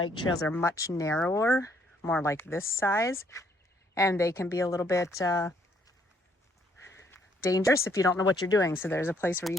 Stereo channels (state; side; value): normal; both; correlation 0.67